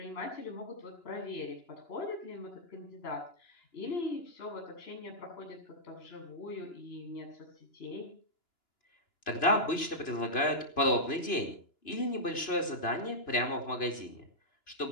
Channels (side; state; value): right; late; 2.9 ms